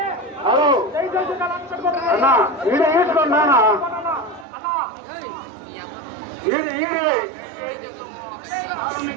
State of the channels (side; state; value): left; drops out; at 4.5 s